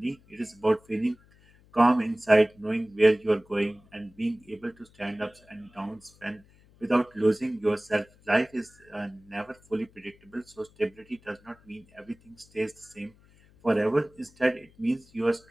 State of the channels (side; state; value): left; noise; hum, 28 dB below the sound